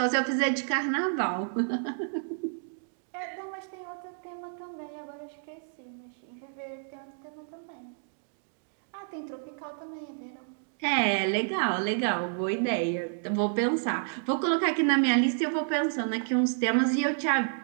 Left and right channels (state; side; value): silent; left; digital silence